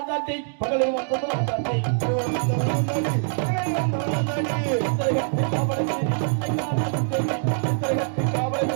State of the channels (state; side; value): silent; left; digital silence